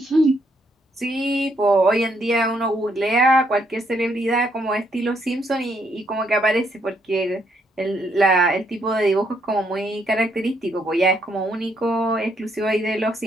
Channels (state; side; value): normal; both; correlation 0.73